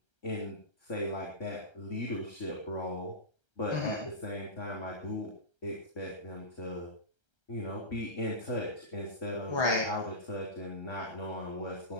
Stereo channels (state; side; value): late; right; 1.3 ms